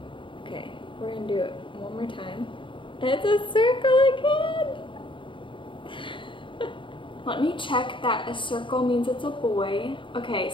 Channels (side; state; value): right; late; 0.24 ms